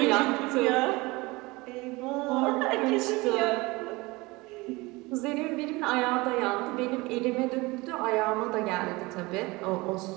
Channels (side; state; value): left; quieter; 23.1 dB